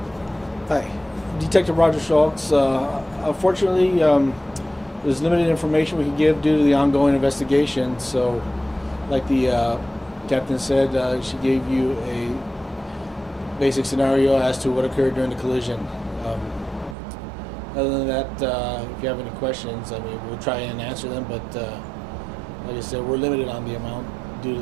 Hi, Detective Roger Schultz. Unfortunately, there's limited information we can give due to the ongoing investigation. So, like the captain said, she gave you a basic scenario as to what occurred during the collision. Other than that, if you have any questions, I mean, we'll try and answer them, but like I said, we're limited on the amount due to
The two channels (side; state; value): left; drops out; at 16.9 s